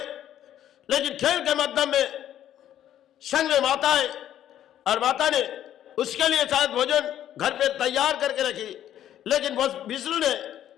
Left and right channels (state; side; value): quieter; right; 11.3 dB